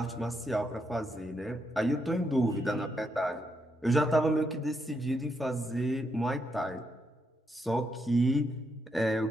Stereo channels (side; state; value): both; normal; correlation 0.79